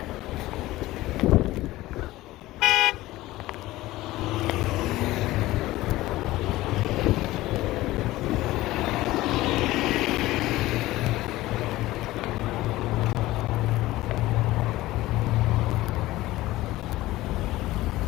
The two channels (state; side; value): quieter; right; 17.3 dB